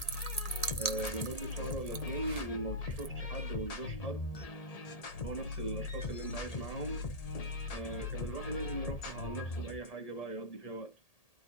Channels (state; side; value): late; right; 1.8 ms